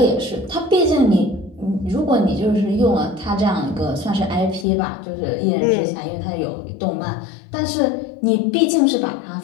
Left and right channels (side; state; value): right; drops out; at 4.7 s